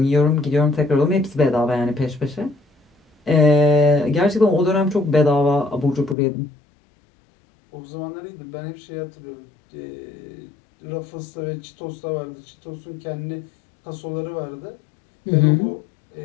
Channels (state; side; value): drops out; right; at 6.2 s